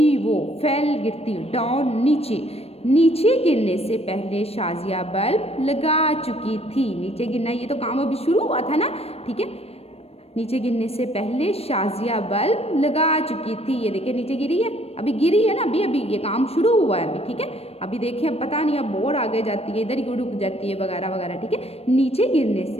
वो, फेल गिरती, डाउन नीचे, नीचे गिरने से पहले शाजिया बल्ब लगा चुकी थी, नीचे गिरना ये तो काम अभी शुरू हुआ था ना, ठीक है। नीचे गिरने से पहले शाजिया बल्ब लगा चुकी थी, ये देखिए नीचे गिरी है, अभी गिरी है ना, अभी ये काम शुरू हुआ है अभी, ठीक है। अभी देखिए अब पता नहीं, अब बोर्ड आगे जाती है, इधर ही रुक जाती है वगैरह वगैरह, ठीक है। नीचे गिरने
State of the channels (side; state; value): right; late; 0.29 ms